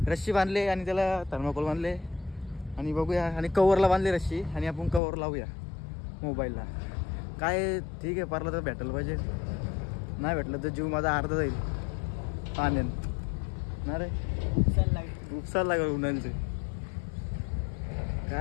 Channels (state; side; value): drops out; right; at 5.0 s